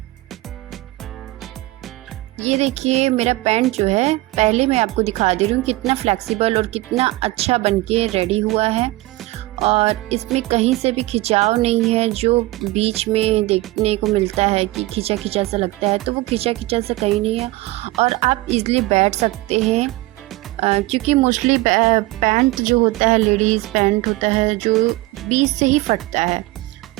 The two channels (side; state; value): left; quieter; 19.5 dB